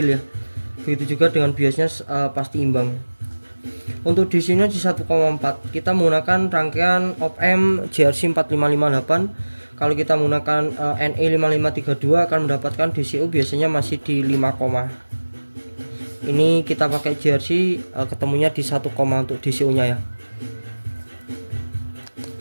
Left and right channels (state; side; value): inverted; both; correlation -1.00